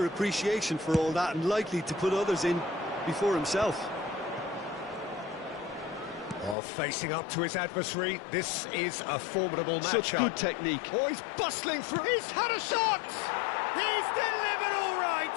appreciation for all that and likely to put others in before himself. Oh, facing up to his adversary, this is a formidable matchup. Such good technique. Oh, he's bustling through. He's had a shot! He's delivered all right!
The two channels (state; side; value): drops out; right; at 6.6 s